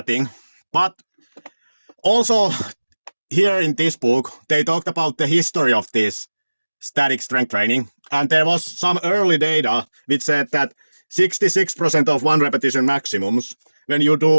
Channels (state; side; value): inverted; both; correlation -1.00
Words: thing. But also here in this book, they talked about the history of this static strength training. And there was some early data which said that 66% of 1 repetition maximums, when you